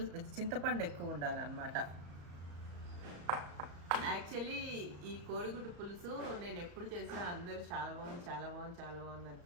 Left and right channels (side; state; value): left; late; 34 ms